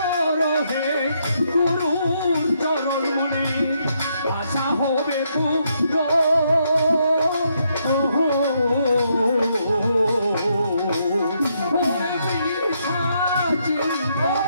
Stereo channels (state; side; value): inverted; both; correlation -0.76